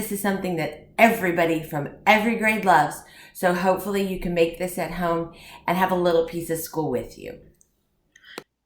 is something that everybody from every grade loves. So hopefully you can make this at home and have a little piece of school with you.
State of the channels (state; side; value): identical; both; correlation 1.00